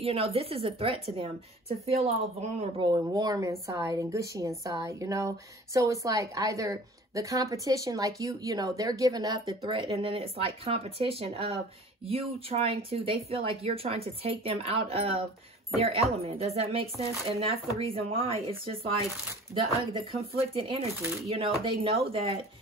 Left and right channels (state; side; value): normal; both; correlation 0.45